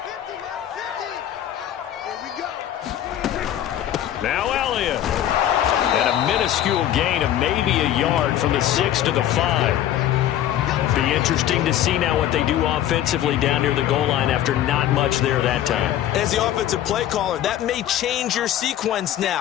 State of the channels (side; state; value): right; quieter; 11.8 dB